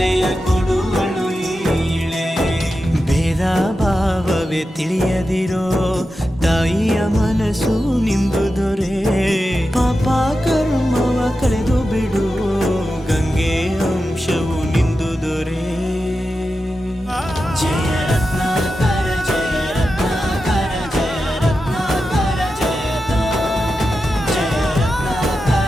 ಕೊಡುವಳು ಈಳೆ. ಭೇದ ಭಾವವೇ ತಿಳಿಯದಿರೋ ತಾಯಿಯ ಮನಸ್ಸು ನಿಂದು ದೊರೆ. ಪಾಪ ಕರ್ಮವ ಕಳೆದು ಬಿಡು,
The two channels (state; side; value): normal; both; correlation 0.91